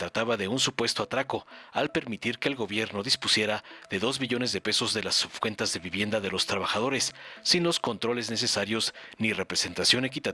de un supuesto atraco al permitir que el gobierno dispusiera de 2 billones de pesos de las subcuentas de vivienda de los trabajadores, sin los controles necesarios ni representación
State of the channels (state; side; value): identical; both; correlation 1.00